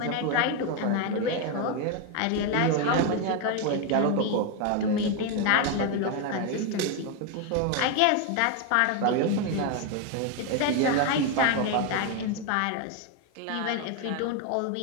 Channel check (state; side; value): different; both; correlation 0.01